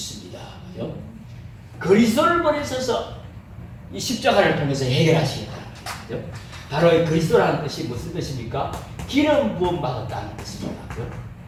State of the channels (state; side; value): identical; both; correlation 1.00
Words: 그리스도를 보내셔서 이 십자가를 통해서 해결하시겠다는 거예요. 바로 이 그리스도라는 뜻이 무슨 뜻입니까? 기름 부음 받았다는 뜻입니다.